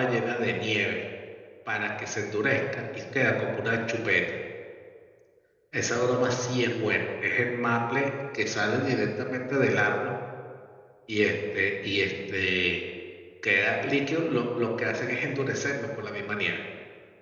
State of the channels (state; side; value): identical; both; correlation 1.00